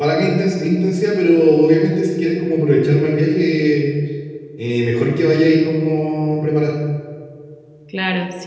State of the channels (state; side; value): identical; both; correlation 1.00